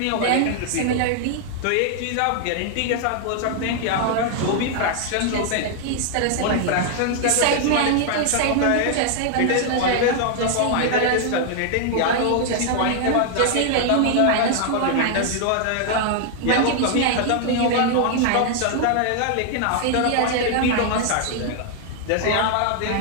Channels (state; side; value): different; both; correlation 0.00